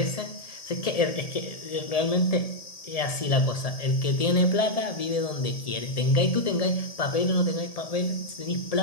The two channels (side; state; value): right; late; 1.7 ms